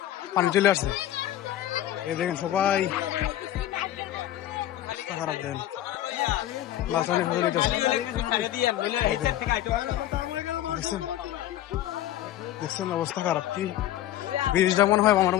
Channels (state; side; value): quieter; right; 13.1 dB